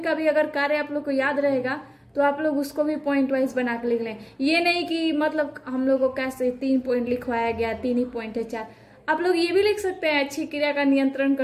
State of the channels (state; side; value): identical; both; correlation 1.00